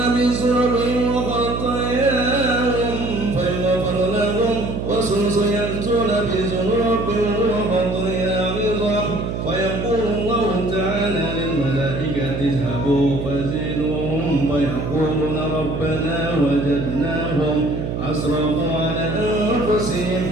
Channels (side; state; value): right; noise; hum, 4 dB below the sound